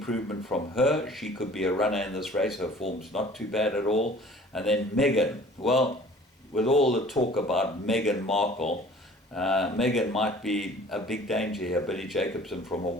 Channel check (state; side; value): normal; both; correlation 0.49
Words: from her. She could be a runner in this race. Her form's not too bad at all. And then Megan. Well, with all the talk about Meghan Markle, Megan might be a big danger here. Billy Jacobson from a